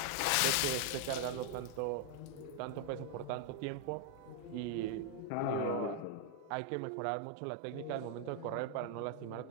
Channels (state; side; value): different; both; correlation 0.00